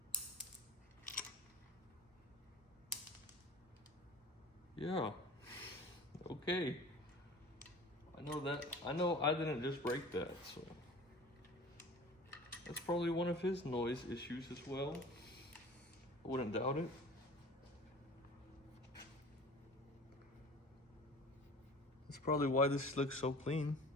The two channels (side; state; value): both; normal; correlation 0.41